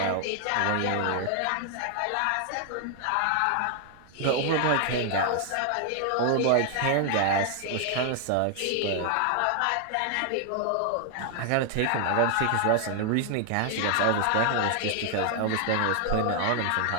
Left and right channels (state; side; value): different; both; correlation 0.00